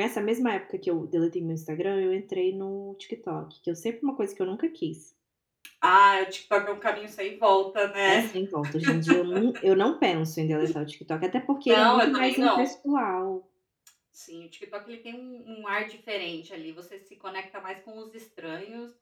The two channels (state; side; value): identical; both; correlation 1.00